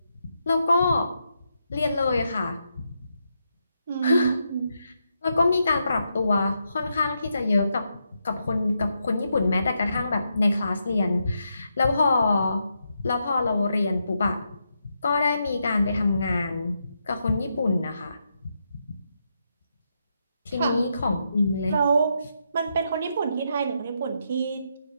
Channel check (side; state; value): both; inverted; correlation -0.82